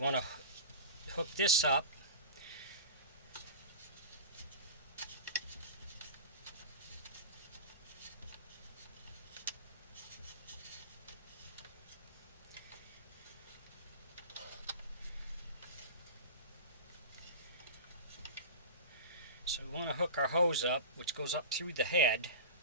to hook this up. So we want to hook our hose up, which goes up through the head.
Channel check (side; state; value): both; inverted; correlation -0.31